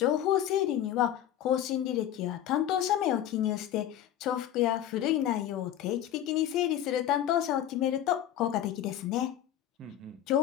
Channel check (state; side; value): quieter; right; 11.2 dB